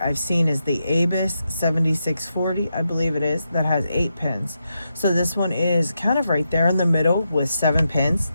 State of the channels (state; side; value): inverted; both; correlation -0.85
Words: I've seen is the Abus 7640, I believe it is, that has 8 pins. So this one is kind of right there in the middle with 7 pins.